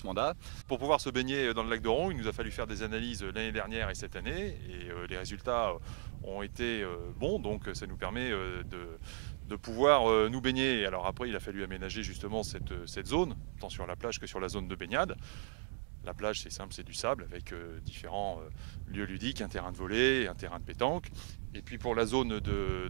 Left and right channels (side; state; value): left; silent; 53 dB below the other